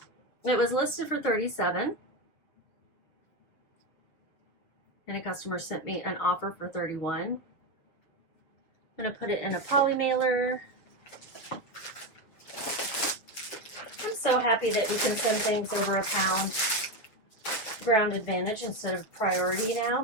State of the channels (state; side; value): late; right; 7.3 ms